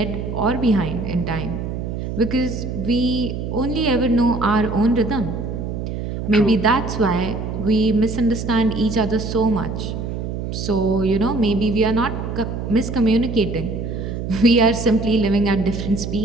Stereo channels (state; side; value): noise; right; hum, 5 dB below the sound